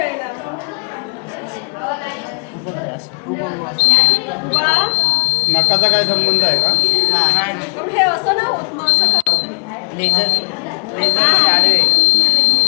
नकाचा काय संबंध आहे का? नाही हे असं नाही होत मग असं का होतं? लेझर आडवे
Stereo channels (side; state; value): right; quieter; 34.9 dB